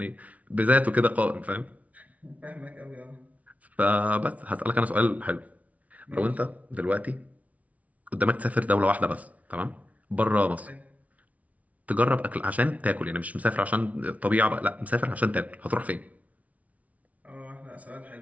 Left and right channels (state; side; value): late; left; 0.069 ms